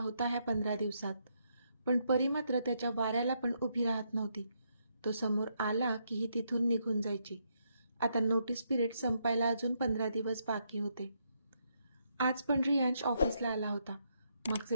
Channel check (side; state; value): both; inverted; correlation -0.77